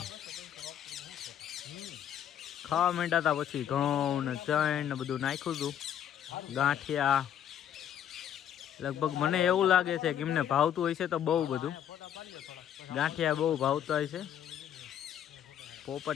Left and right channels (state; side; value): quieter; right; 9.9 dB